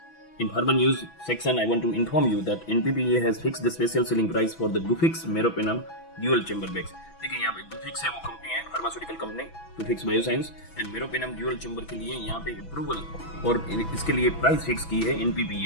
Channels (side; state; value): right; late; 6.0 ms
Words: In Pharma News section, I want to inform you that NPPA has fixed the special selling price for the Gufic's Meropenem dual chamber bags. देखिए यहाँ पे Gufic's है वो company है, pharmaceutical company, Gufic's bioscience and meropenem dual chamber के लिए यहाँ पे अप्रूवल और इसके लिए प्राइस फिक्स की है